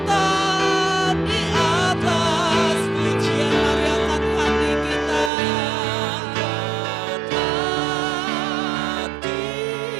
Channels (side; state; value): left; drops out; at 5.3 s